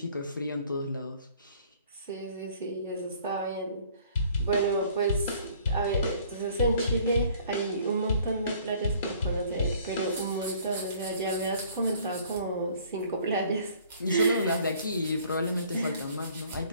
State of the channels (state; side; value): inverted; both; correlation -0.56